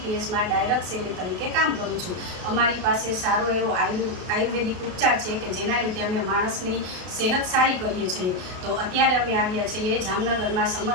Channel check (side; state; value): left; late; 33 ms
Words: ડાયરેક્ટ સેલર તરીકે કામ કરું છું। અમારી પાસે સારો એવો આયુર્વેદિક ઉપચાર છે કે જેના લીધે અમે માણસની સેહત સારી કરીએ છીએ। તો અત્યારે અમે આવ્યા છીએ જામનગરમાં